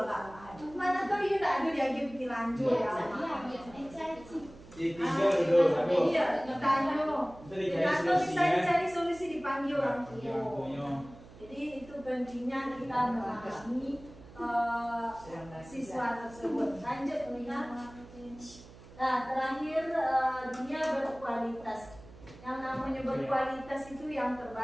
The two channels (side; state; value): right; noise; hum, 19 dB below the sound